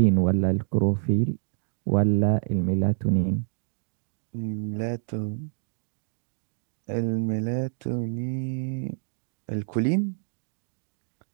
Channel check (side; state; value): left; silent; digital silence